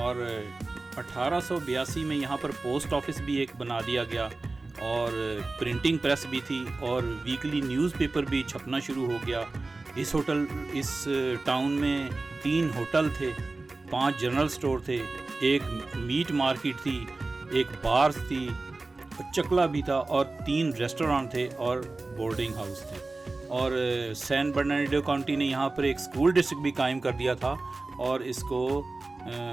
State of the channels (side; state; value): left; quieter; 3.4 dB